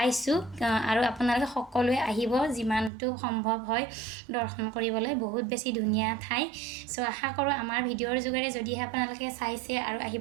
আৰু আপোনালোকে সকলোৱে আহিব যিমানটো সম্ভৱ হয় দৰ্শন কৰিবলৈ বহুত বেছি ধুনীয়া ঠাই সো আশা কৰো আমাৰ ভিডিঅ'ৰ যোগেৰে যদিহে আপোনালোকে চাইছে আৰু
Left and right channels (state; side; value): drops out; left; at 2.9 s